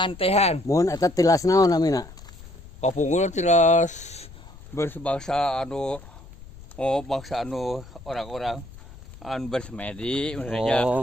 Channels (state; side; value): noise; left; rumble, 18 dB below the sound